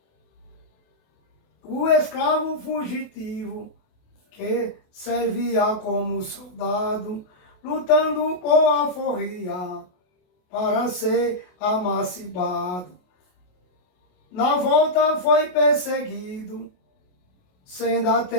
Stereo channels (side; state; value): right; late; 28 ms